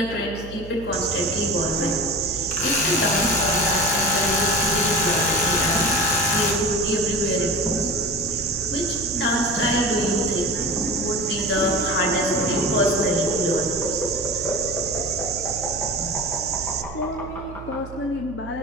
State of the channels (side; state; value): right; noise; hum, 14 dB below the sound